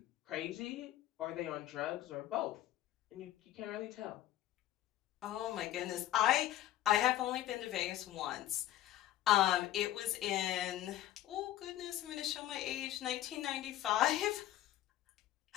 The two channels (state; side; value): quieter; right; 13.6 dB